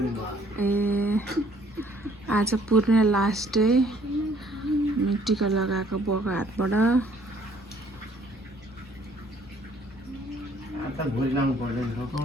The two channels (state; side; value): normal; both; correlation 0.61